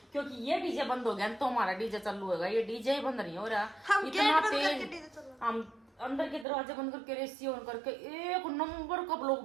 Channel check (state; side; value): drops out; left; at 6.5 s